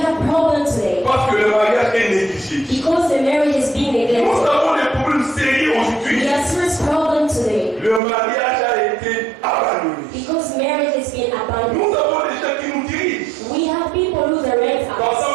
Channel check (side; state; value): left; drops out; at 8.0 s